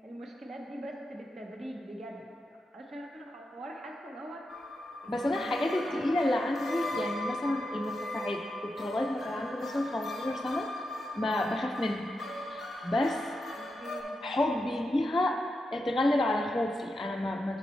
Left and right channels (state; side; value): normal; both; correlation 0.87